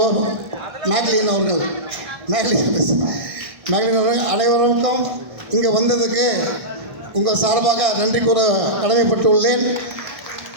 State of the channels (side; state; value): left; late; 1.7 ms